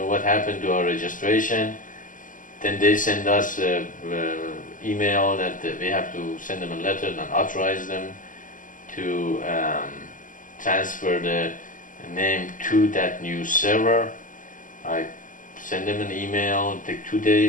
what happened to our registration. Then they send us an email that we have to send them a letter and authorize them to transfer the name to that new server. I sent them an email, it took 2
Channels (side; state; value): right; late; 0.38 ms